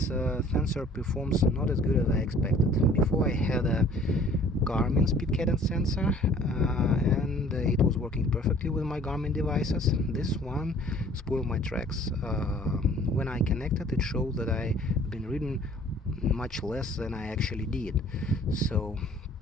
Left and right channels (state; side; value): normal; both; correlation 0.53